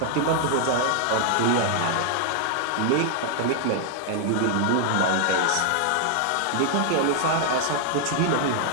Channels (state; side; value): different; both; correlation 0.00